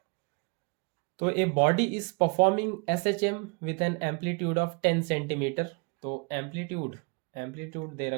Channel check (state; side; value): quieter; left; 31.6 dB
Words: तो a body is performing SHM with an amplitude of 10 centimetre. तो एम्पलीट्यूड दे